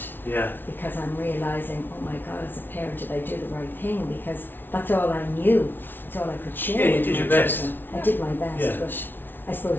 Yeah. because I'm realising, oh my God, as a parent, did I do the right thing? Because that's all I knew, that's all I could share. Yeah, you with did my your best. children. I did my best, Yeah. but I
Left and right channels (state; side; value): late; right; 0.097 ms